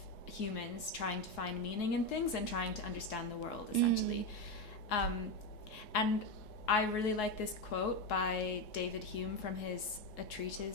humans trying to find meaning in things and trying to understand the world, essentially. And I really like this quote by David Hume from his A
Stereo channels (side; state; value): right; late; 3.7 ms